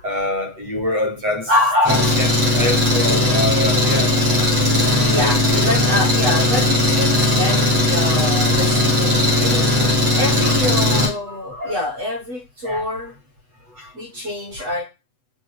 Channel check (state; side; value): late; left; 8.0 ms